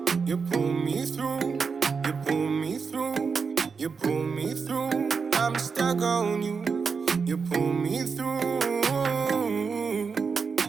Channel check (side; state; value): left; quieter; 5.4 dB